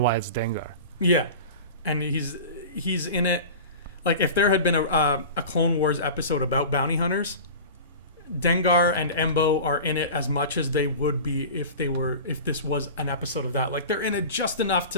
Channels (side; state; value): both; inverted; correlation -0.35